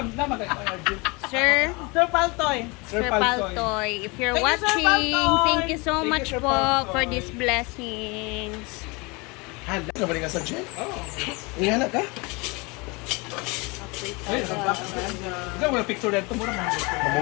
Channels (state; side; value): quieter; right; 27.3 dB